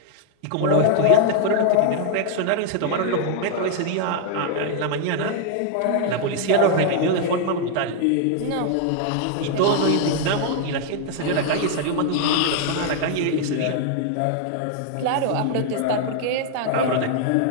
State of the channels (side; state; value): both; different; correlation 0.00